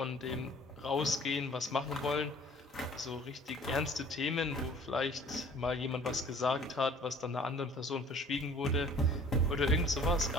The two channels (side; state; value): both; normal; correlation 0.51